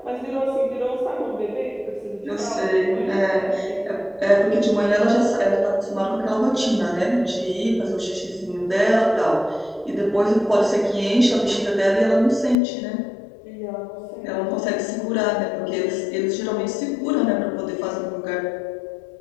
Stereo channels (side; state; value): right; drops out; at 12.6 s